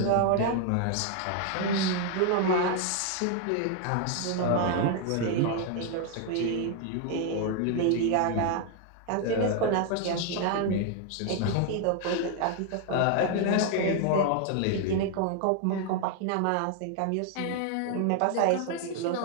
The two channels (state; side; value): different; both; correlation 0.00